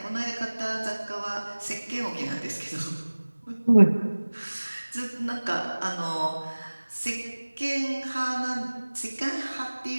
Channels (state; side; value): inverted; both; correlation -1.00